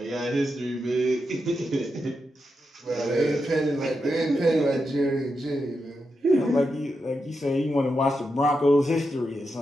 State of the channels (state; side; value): normal; both; correlation 0.86